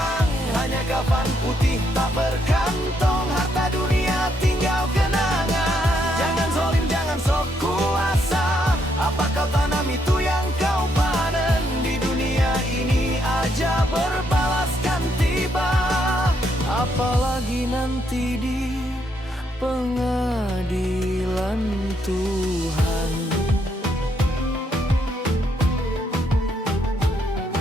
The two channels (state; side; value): normal; both; correlation 0.75